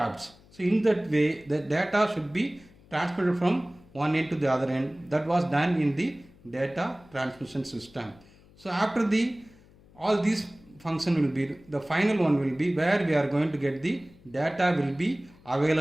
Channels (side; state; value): left; noise; hum, 26 dB below the sound